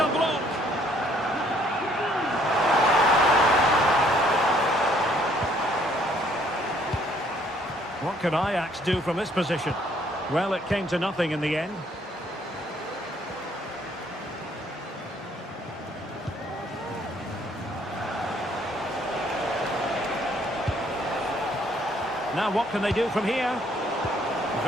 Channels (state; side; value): normal; both; correlation 0.64